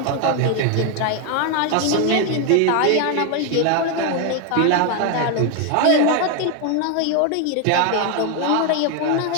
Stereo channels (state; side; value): different; both; correlation 0.01